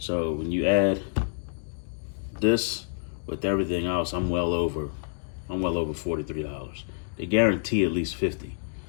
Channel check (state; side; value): silent; right; digital silence